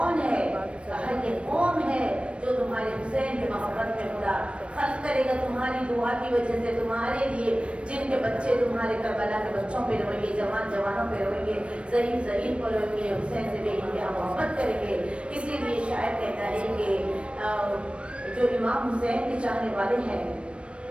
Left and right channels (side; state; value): left; late; 0.059 ms